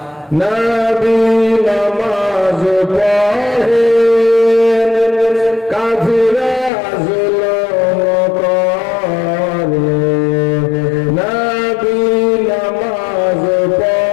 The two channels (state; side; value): drops out; right; at 6.7 s